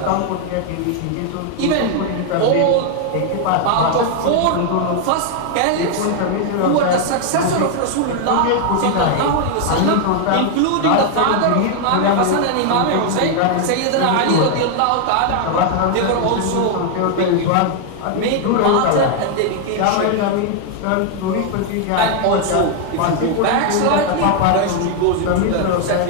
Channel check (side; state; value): both; different; correlation 0.00